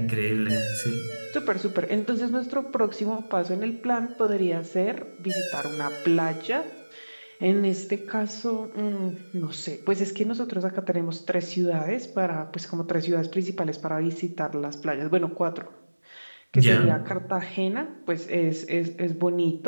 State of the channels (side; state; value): both; inverted; correlation -1.00